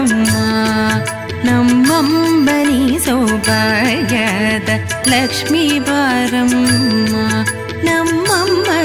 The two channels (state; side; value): identical; both; correlation 1.00